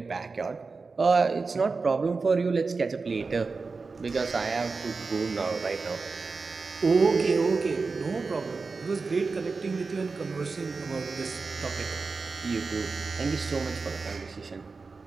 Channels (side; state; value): left; quieter; 4.3 dB